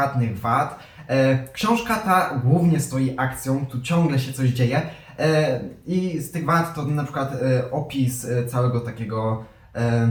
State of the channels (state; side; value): identical; both; correlation 1.00